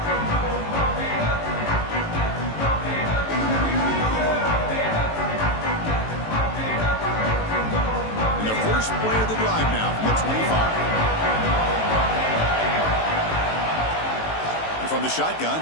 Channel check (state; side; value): late; right; 18 ms